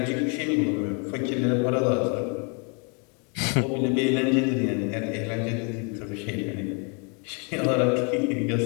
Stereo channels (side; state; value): right; quieter; 35.7 dB